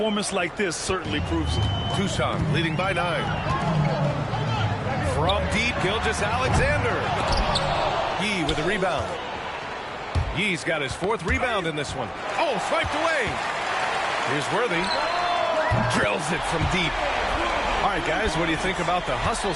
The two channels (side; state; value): both; identical; correlation 1.00